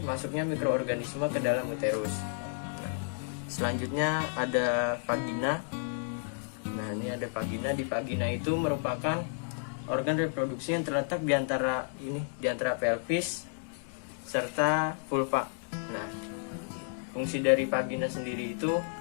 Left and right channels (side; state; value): right; silent; digital silence